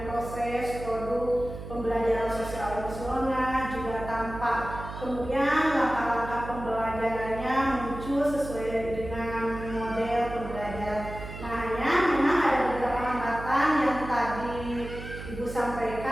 proses, produk, pembelajaran sosial emosional juga tampak. Kemudian langkah-langkah pembelajarannya muncul sesuai dengan model pembelajaran. Nah, hanya memang ada beberapa hambatan yang tadi Ibu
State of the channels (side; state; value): right; noise; hum, 10 dB below the sound